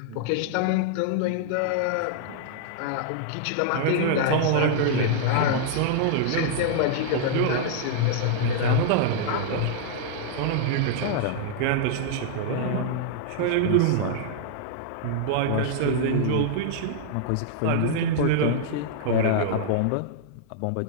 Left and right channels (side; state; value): both; different; correlation -0.01